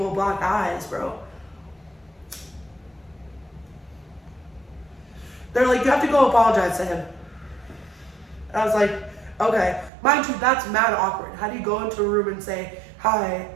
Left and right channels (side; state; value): left; drops out; at 9.9 s